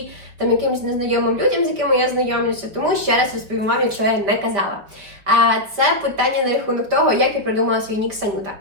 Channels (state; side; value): late; left; 5.3 ms